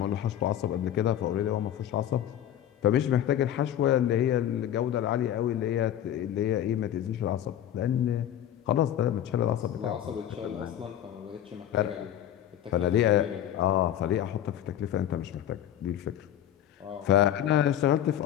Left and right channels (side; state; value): right; quieter; 11.0 dB